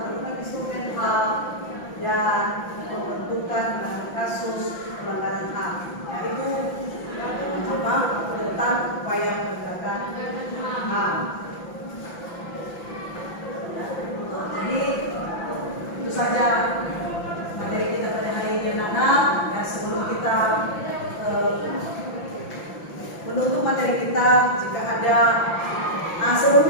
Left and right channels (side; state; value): right; late; 5.9 ms